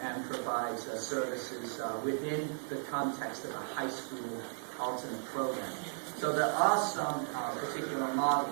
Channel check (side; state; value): left; silent; 54 dB below the other